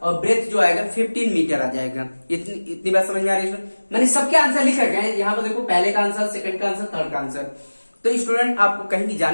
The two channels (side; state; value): both; inverted; correlation -1.00